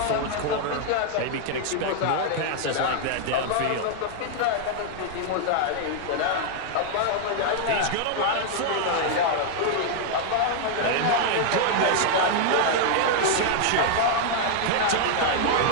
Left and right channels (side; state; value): both; different; correlation 0.00